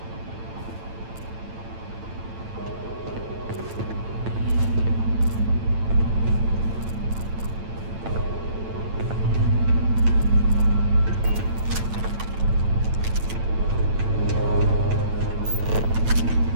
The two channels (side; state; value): left; late; 8.9 ms